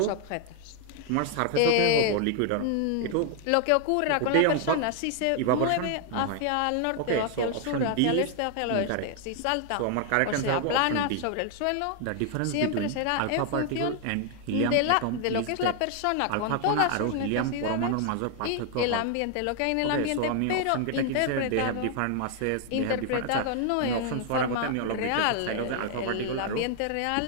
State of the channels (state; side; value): different; both; correlation 0.00